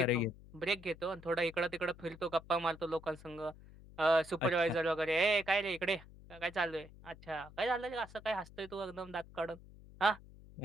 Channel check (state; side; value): noise; left; hum, 19 dB below the sound